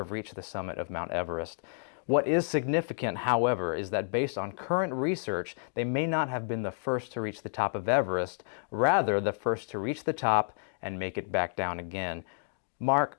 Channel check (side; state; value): right; silent; digital silence